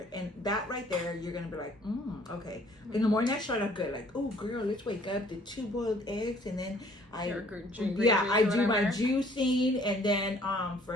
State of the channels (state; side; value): normal; both; correlation 0.58